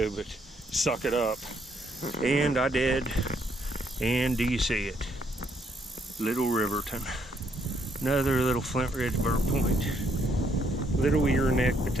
but suck it up. And I did. And do you see it? Little Riverton. Another little Flint Ridge burr point. Little ear neck, but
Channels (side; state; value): both; normal; correlation 0.71